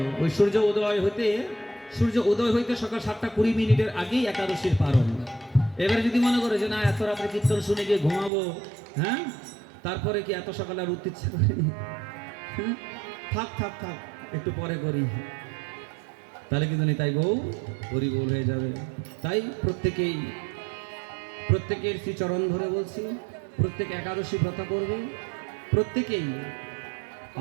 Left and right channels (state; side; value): drops out; left; at 8.3 s